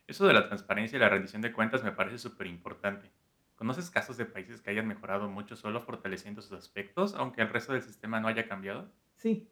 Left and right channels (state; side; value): identical; both; correlation 1.00